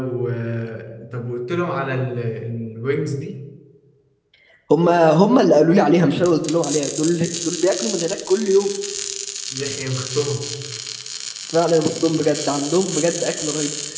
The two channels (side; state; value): both; identical; correlation 1.00